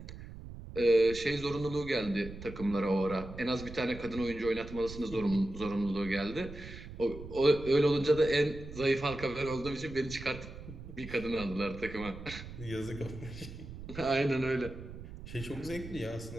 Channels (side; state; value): right; noise; rumble, 12 dB below the sound